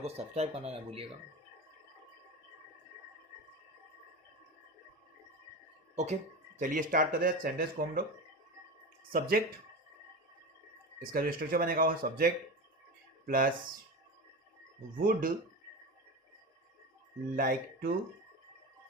को सब्सक्राइब करना ना भूलिएगा। ओके, चलिए स्टार्ट करते हैं सेंटेंस को हम लोग। सब्जेक्ट, इसका जो स्ट्रक्चर बनेगा वो subject plus would like two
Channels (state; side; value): normal; both; correlation 0.24